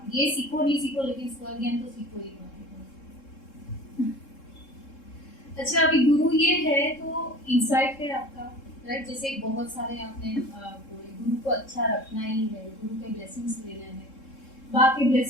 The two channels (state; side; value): late; right; 3.7 ms